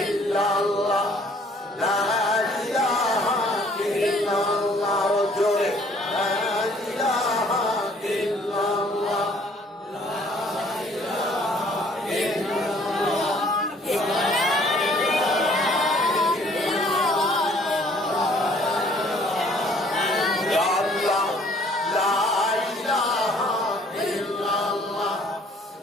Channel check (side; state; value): both; normal; correlation 0.59